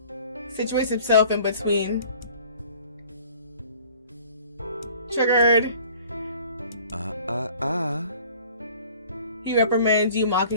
situates himself in between. Triggered. He reprimands you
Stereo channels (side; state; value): both; inverted; correlation -0.50